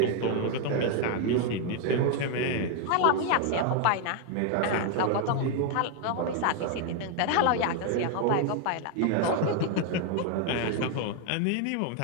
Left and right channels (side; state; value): both; different; correlation 0.00